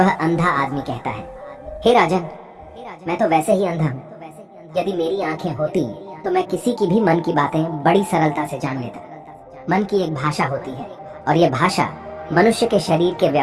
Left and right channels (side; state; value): both; identical; correlation 1.00